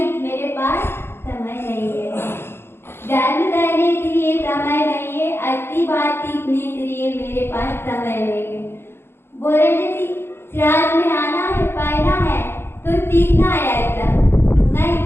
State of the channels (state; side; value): late; right; 0.11 ms